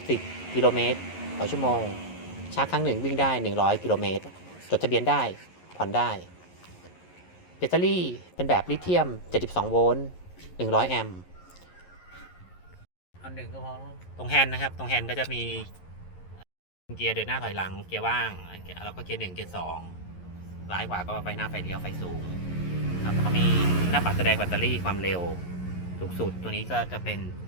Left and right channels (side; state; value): right; late; 11 ms